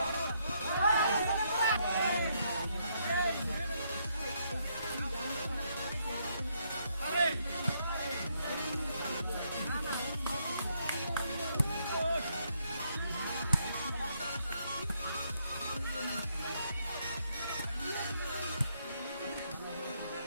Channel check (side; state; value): both; inverted; correlation -0.74